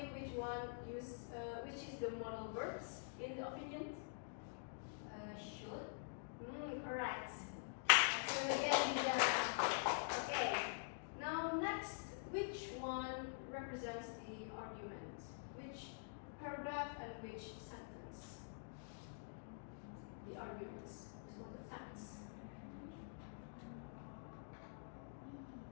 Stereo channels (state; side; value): silent; right; digital silence